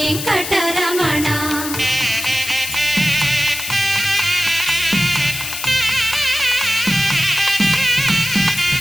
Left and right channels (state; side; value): noise; left; hiss, 6 dB below the sound